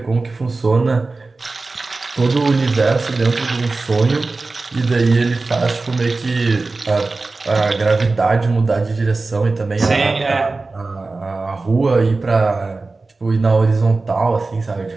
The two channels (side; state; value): left; quieter; 3.6 dB